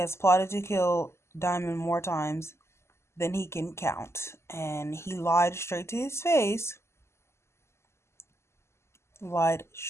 plotted to kill Diamond more times than he can count. And he lied straight to his face. Lied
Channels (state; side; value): late; right; 0.13 ms